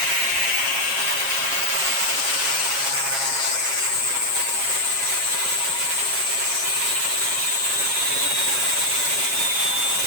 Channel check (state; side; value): late; left; 7.4 ms